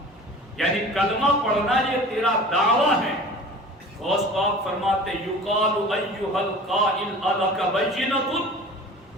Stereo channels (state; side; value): normal; both; correlation 0.41